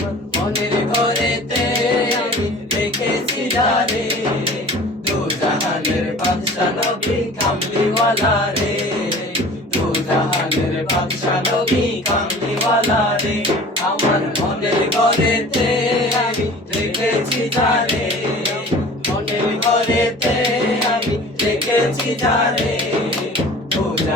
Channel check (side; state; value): both; normal; correlation 0.43